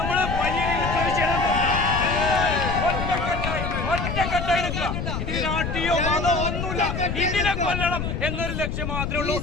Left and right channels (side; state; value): left; noise; rumble, 3 dB below the sound